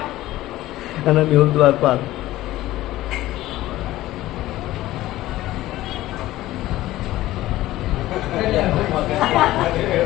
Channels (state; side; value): quieter; right; 15.9 dB